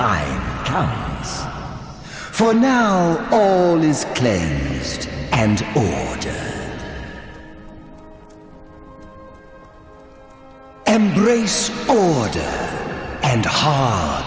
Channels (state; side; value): identical; both; correlation 1.00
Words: comes. For now, all is cleansed and ordered. Embrace order and